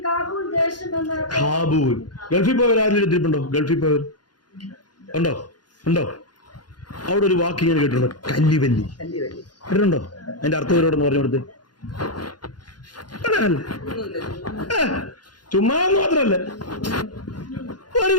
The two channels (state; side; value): late; right; 0.70 ms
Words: കാബൂൽ. ഗൾഫിൽ പോയവർ ആരും എടുത്തിട്ടുണ്ടോ? ഗൾഫിൽ പോയവർ ഉണ്ടോ? അവിടെ ഒരു വാക്ക് ഇങ്ങനെ കേട്ടിട്ടുണ്ടോ? കല്ലിവല്ലി കേട്ടിട്ടുണ്ടോ? അതിന്റെ അർത്ഥം ഇവരോടൊന്ന് പറഞ്ഞു കൊടുത്ത്. ചുമ്മാ മാത്രല്ല, ഒരു